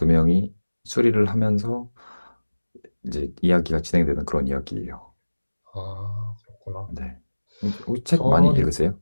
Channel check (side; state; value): both; inverted; correlation -1.00